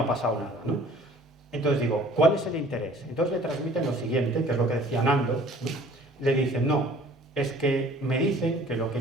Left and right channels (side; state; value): both; normal; correlation 0.51